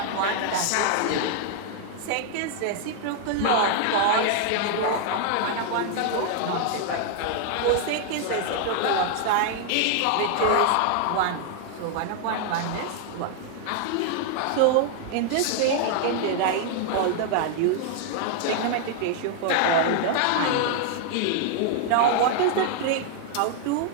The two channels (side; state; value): both; different; correlation 0.00